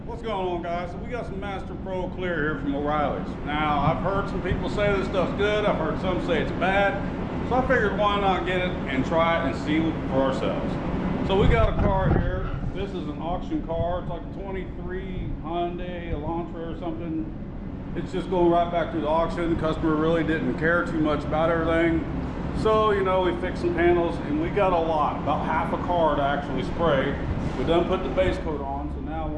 What's going on, guys? So we got some Master Pro Clear here from O'Reilly's. Now, I've heard some people say this stuff's good. I've heard some say it's bad. So I figured why not get it and try it and see for ourselves. So we got a car here. This is an auction car. It's like a 23 Hyundai Elantra or something. It's just going right back to the auction. The customer really didn't care too much about everything. So, you know, we fixed some panels and we got a lot, about half a car to actually spray. We done put the base coat on, so now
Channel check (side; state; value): both; identical; correlation 1.00